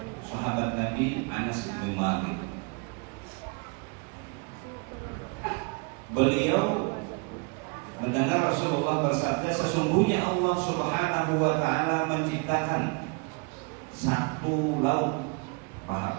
sahabat Nabi Anas bin Malik. Beliau mendengar Rasulullah bersabda, sesungguhnya Allah Subhanahu wa taala menciptakan satu laut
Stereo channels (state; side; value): quieter; left; 31.8 dB